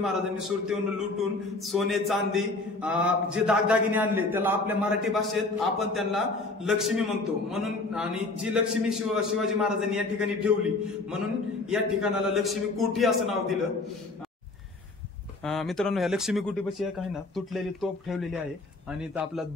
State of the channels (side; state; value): right; quieter; 3.3 dB